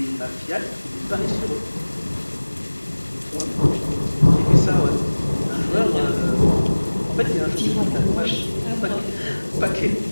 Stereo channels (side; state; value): both; inverted; correlation -1.00